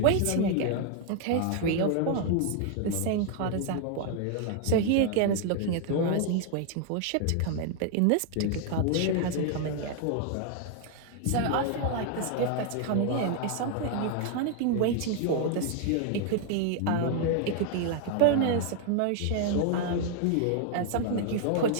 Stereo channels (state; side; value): different; both; correlation 0.00